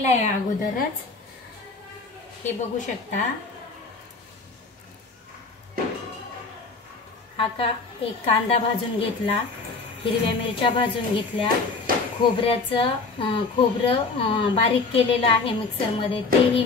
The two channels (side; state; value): right; quieter; 4.1 dB